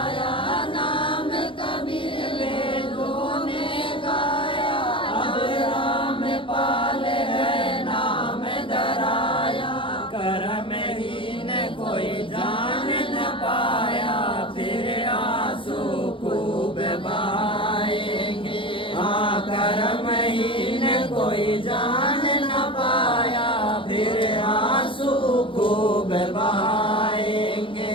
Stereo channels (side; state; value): right; late; 0.25 ms